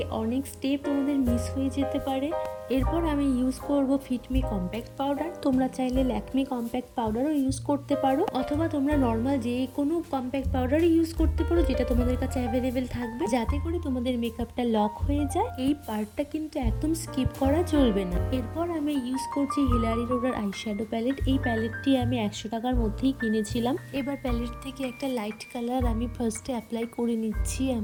অনেক স্টেপ তোমাদের মিস হয়ে যেতে পারে। এরপর আমি ইউজ করব ফিটমি কম্প্যাক্ট পাউডার। তোমরা চাইলে ল্যাকমি কম্প্যাক্ট পাউডারও ইউজ করতে পারো, অথবা তোমরা নর্মাল যে কোনো কম্প্যাক্ট পাউডারই ইউজ করতে পারো যেটা তোমাদের কাছে অ্যাভেলেবেল থাকবে, যাতে করে তোমাদের মেকআপটা লক হয়ে যায়। এই পার্টটা কিন্তু একদম স্কিপ করা চলবে না। এরপর আমি ইউজ করছি হিলারি রোডার আইশ্যাডো প্যালেট। এই প্যালেটটি আমি 100 টাকার মধ্যেই কিনেছিলাম। এবার প্যালেট থেকে একটা লাইট কালার আমি ফার্স্টে অ্যাপ্লাই করে নিচ্ছি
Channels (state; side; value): identical; both; correlation 1.00